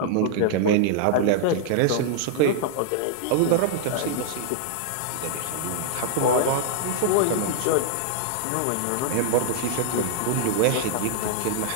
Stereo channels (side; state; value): both; different; correlation -0.01